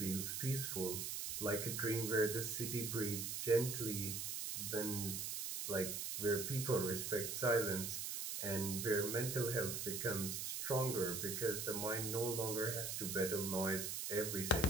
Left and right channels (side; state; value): right; noise; hiss, 3 dB below the sound